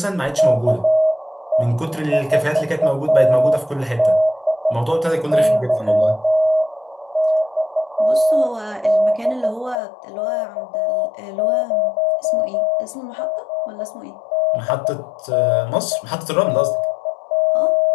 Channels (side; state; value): right; drops out; at 9.8 s